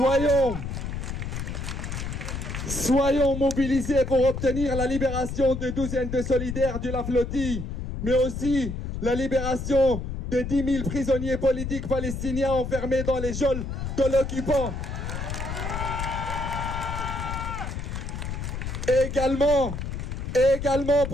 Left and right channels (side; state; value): left; noise; rumble, 5 dB below the sound